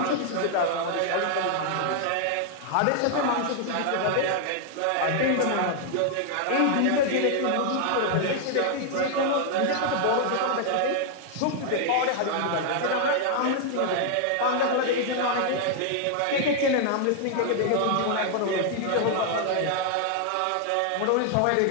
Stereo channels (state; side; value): different; both; correlation 0.00